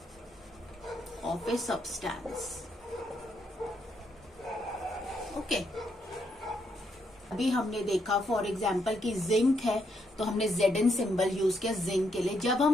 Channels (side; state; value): both; normal; correlation 0.77